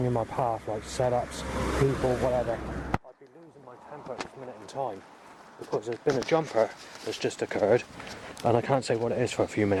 in my path, like setups, people, whatever, I'd be losing my temper at this minute in time, because there's been a jumper that's just occurred, and I can't say what it is for a few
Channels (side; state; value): both; identical; correlation 1.00